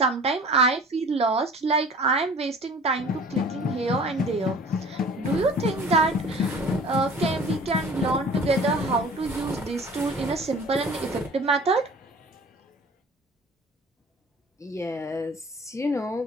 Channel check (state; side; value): normal; both; correlation 0.45